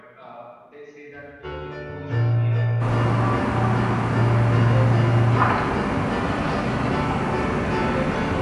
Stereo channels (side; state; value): both; identical; correlation 1.00